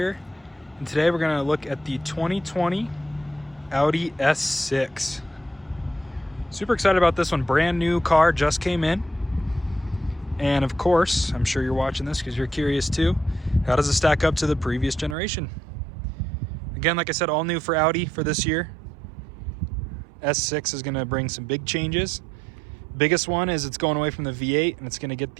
And today we're going to look at the 2020 Audi S6. Super excited about this one. Brand new car, just came in. And of course, I'm sure you're watching this because you're curious too. How does it stack up to the previous generation? Again, like I said, all new for Audi for this year. S6 is going to bring some big changes. Biggest one is it's going away from the V8 and it's going to get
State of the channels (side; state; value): left; drops out; at 15.2 s